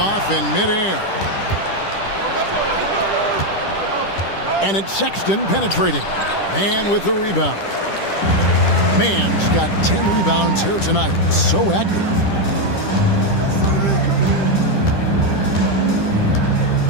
in midair. And it's Sexton penetrating. Man with the rebound. Man's got 10 rebounds here tonight. So active.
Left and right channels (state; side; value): late; right; 10 ms